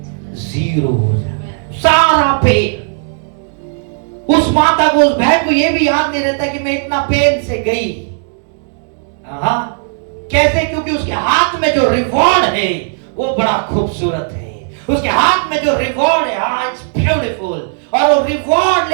0 हो जाता है। सारा पेन। उस माता को, उस बहन को ये भी याद नहीं रहता कि मैं इतना पेन से गई। कैसे? क्योंकि उसके हाथ में जो रिवॉर्ड है वो बड़ा खूबसूरत है। उसके हाथ में जो रिवॉर्ड है, इट्स ब्यूटीफुल। और वो रिवॉर्ड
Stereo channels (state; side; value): silent; left; 70 dB below the other